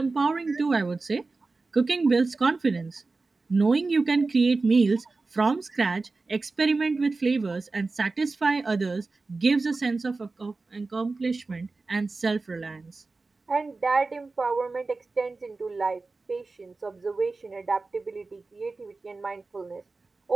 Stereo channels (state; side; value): quieter; left; 3.7 dB